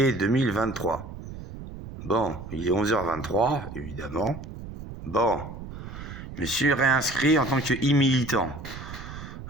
2023. Bon, il est 11h23, évidemment. Bon, je me suis réinscrit en tant que e-militant.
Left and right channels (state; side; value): noise; right; rumble, 12 dB below the sound